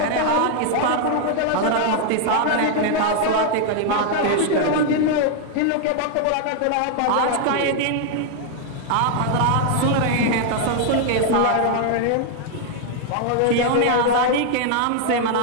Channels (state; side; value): different; both; correlation 0.00